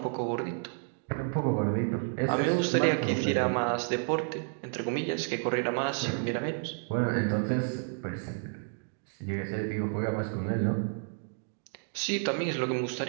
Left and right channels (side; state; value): left; silent; 57 dB below the other